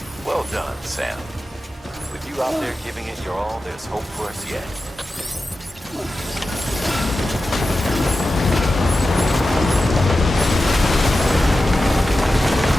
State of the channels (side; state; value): both; normal; correlation 0.92